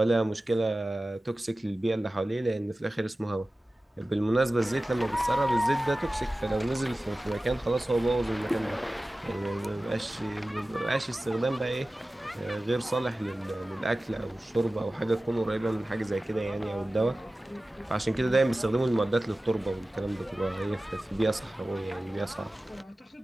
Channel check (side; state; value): both; normal; correlation 0.96